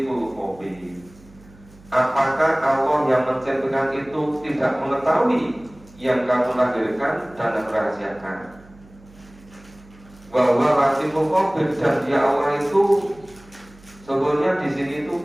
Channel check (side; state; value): right; noise; hum, 24 dB below the sound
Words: khabir. Apakah Allah yang menciptakan itu tidak mengetahui yang kamu lahirkan dan merahasiakan? Wa huwal latiful khabir, dan Dia Allah itu sebetulnya di sini itu